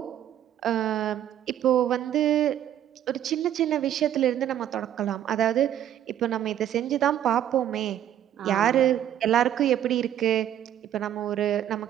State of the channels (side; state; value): left; quieter; 11.1 dB